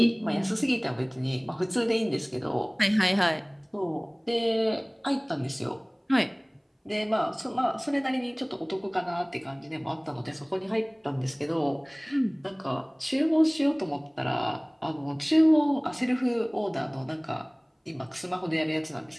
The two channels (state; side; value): identical; both; correlation 1.00